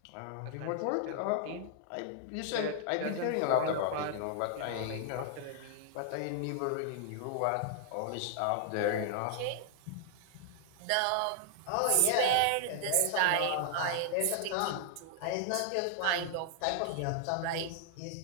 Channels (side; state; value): both; different; correlation 0.00